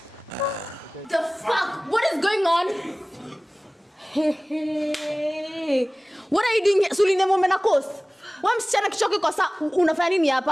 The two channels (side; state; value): both; normal; correlation 0.98